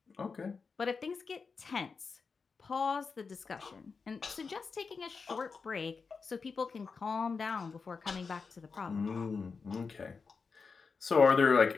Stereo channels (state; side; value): quieter; right; 5.0 dB